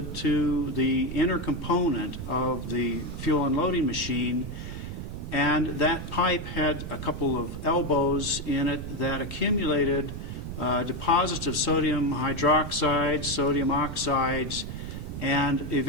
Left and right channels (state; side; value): noise; right; rumble, 7 dB below the sound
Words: to the inner component of the fuel unloading machine, and that pipe had a couple of elbows in it that accumulated deposits of sodium hydroxide, sodium oxides, and